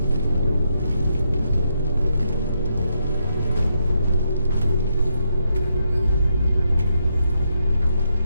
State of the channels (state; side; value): inverted; both; correlation -0.80